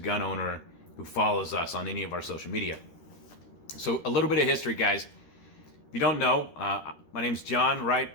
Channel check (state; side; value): late; right; 13 ms